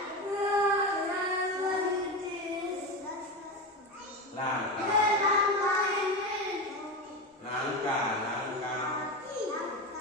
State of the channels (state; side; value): normal; both; correlation 0.20